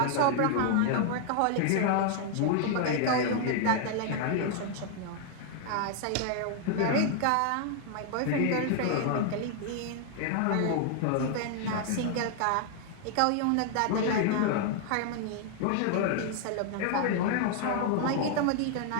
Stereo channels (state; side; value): different; both; correlation 0.00